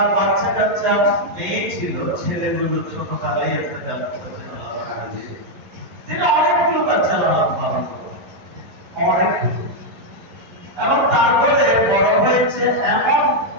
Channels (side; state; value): left; late; 11 ms